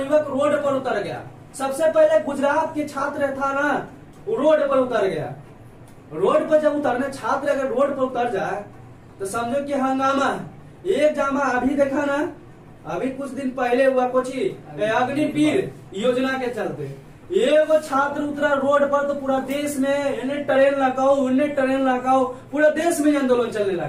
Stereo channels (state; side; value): identical; both; correlation 1.00